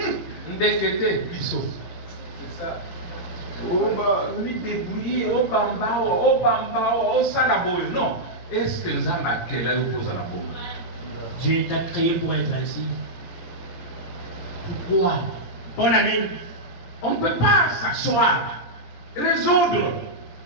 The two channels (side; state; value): right; late; 17 ms